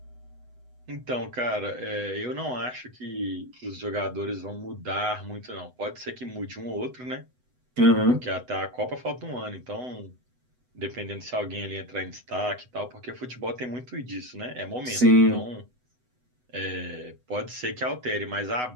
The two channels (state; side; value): late; left; 8.0 ms